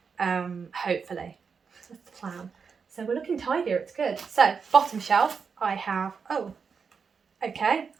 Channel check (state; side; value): quieter; left; 5.8 dB